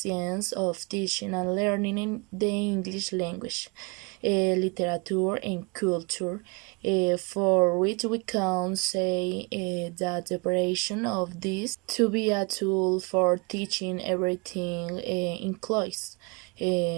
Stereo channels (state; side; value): quieter; left; 30.2 dB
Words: of teaching and learning in the English language, literature and culture, for which we can say that the operation of this to be a tool for teaching everything includes